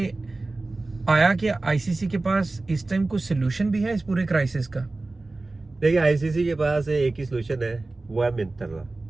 आया कि आईसीसी के पास इस टाइम कुछ सोल्यूशन भी है इस पूरे क्राइसिस का? देखिए आईसीसी के पास एक ही सोल्यूशन है, वो है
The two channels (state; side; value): quieter; left; 3.2 dB